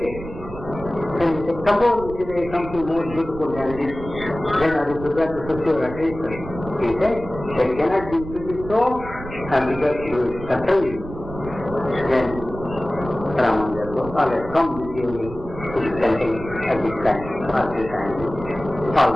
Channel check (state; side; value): noise; right; rumble, 12 dB below the sound